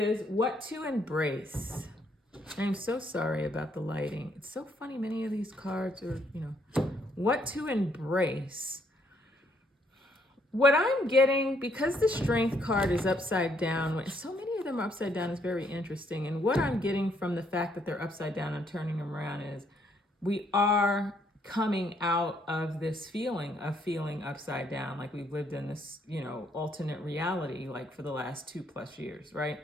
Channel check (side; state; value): both; normal; correlation 0.70